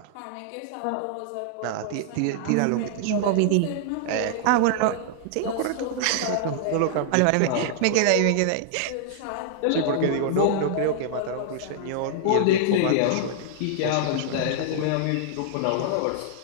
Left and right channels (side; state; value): both; different; correlation -0.01